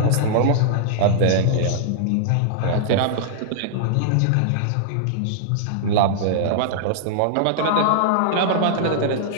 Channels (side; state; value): both; different; correlation -0.01